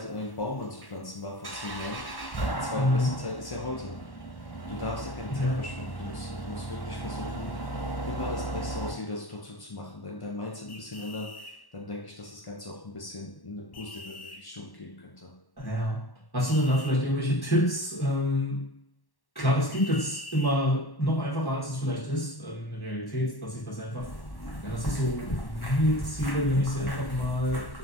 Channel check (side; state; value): right; late; 1.1 ms